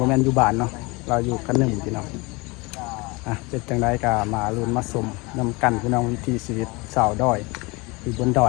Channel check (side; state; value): right; quieter; 25.7 dB